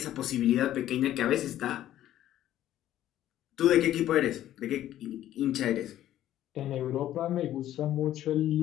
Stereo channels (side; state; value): right; quieter; 12.7 dB